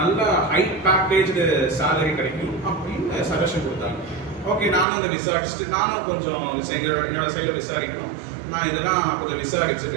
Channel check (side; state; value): left; drops out; at 4.9 s